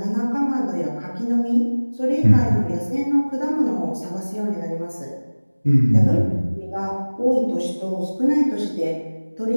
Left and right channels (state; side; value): inverted; both; correlation -1.00